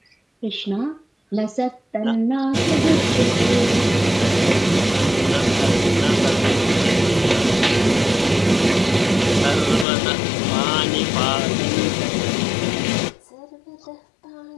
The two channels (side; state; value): right; drops out; at 9.9 s